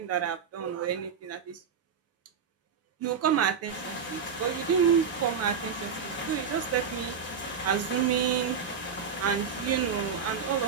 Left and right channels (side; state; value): left; quieter; 6.5 dB